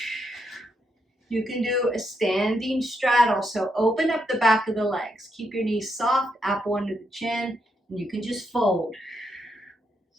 You can do a standing straddle, so open up the back of the legs. Keep your knees soft, apple under the chin, and you can just fold.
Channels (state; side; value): normal; both; correlation 0.80